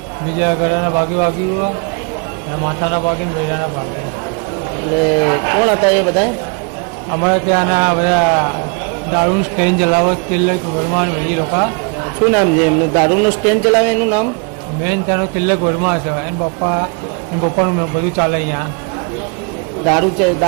બીજા ગળાના ભાગે વાગ્યું અને માથાના ભાગે ને બૈરાના ભાગે. એટલે કોણ હતા એ બધા? અમારે ત્યાંના બધા દારૂનું સ્ટેન્ડ ચલાવો તિલક વર્મા બધી લોકો. શું નામ છે એમને? દારૂનું સ્ટેન્ડ ચલાવે એનું નામ? મેન ત્યાંનો તિલક વર્મા છે. એના પપ્પાનું બધું ચાલે અહીંયા.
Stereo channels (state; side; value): quieter; left; 35.1 dB